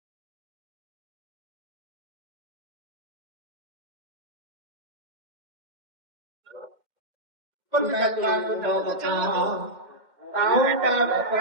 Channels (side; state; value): left; late; 2.1 ms